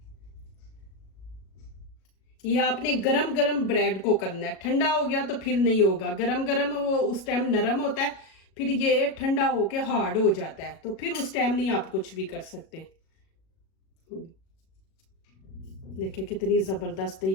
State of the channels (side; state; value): right; late; 37 ms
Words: ये आपने गरम गरम ब्रेड को करना है, ठंडा हो गया तो फिर नहीं होगा। गरम गरम वो उस टाइम नरम होता है, फिर ये ठंडा होके हार्ड हो जाता है, तो फिर उस टाइम नहीं आप कुछ भी कर सकते। देखिए कितनी ज़बरदस्त है।